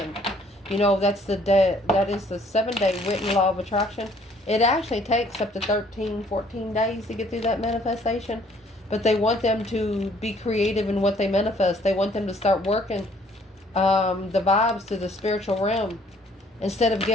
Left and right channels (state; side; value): normal; both; correlation 0.61